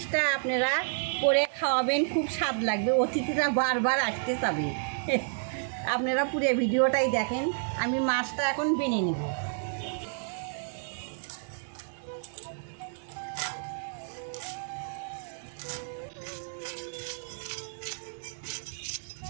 আপনারা করে খাওয়াবেন, খুব স্বাদ লাগবে, অতিথিরা বারবার আসতে চাবে। আপনারা পুরো ভিডিওটাই দেখেন। আমি মাছটা এখন বেনে নেব।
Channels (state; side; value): silent; left; digital silence